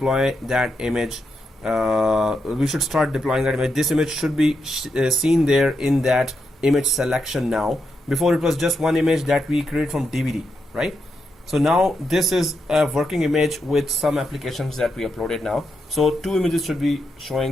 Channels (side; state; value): both; normal; correlation 0.83